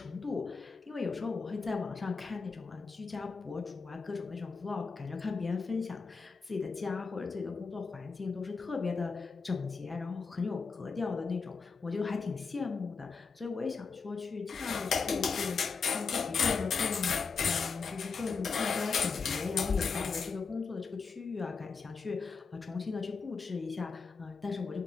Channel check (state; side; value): quieter; right; 4.9 dB